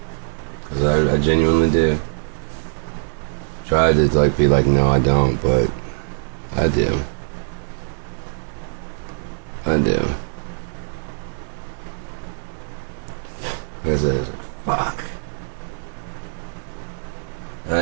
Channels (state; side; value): silent; left; 64 dB below the other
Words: Because I genuinely do. Try to like be like, no, I don't, but I do. I do. I said, fuck.